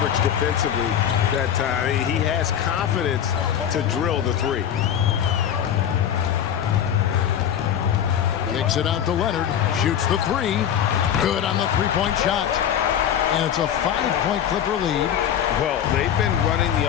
defensively that time, he has confidence to drill the three. Kicks it out to Leonard. Shoots the 3. Good on the three-point shot. And it's a 5-point Clipper lead. Well, they've been running the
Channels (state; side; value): quieter; right; 9.4 dB